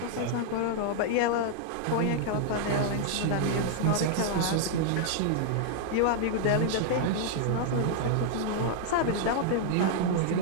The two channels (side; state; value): both; different; correlation -0.01